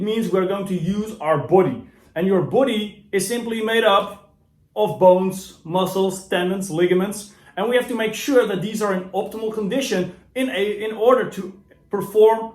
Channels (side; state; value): both; identical; correlation 1.00